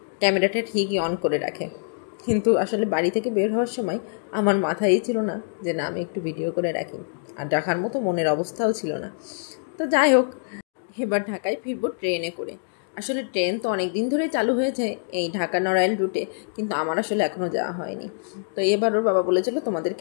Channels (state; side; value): silent; right; digital silence